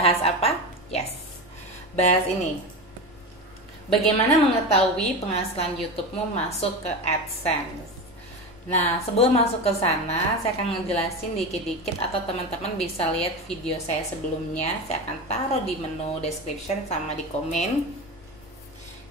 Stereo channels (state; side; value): noise; left; rumble, 25 dB below the sound